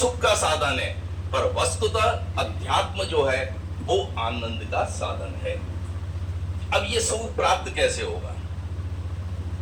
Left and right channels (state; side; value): identical; both; correlation 1.00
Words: का साधन है, पर वस्तुतः अध्यात्म जो है वो आनंद का साधन है। अब ये सुख प्राप्त कैसे होगा?